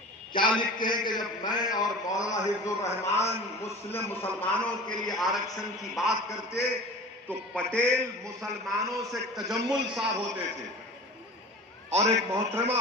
کیا لکھتے ہیں کہ جب میں اور مولانا حفظ الرحمان مسلمانوں کے لیے آرکشن کی بات کرتے تو پٹیل مسلمانوں سے تجمل صاحب ہوتے تھے اور ایک محترمہ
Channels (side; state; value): both; normal; correlation 0.38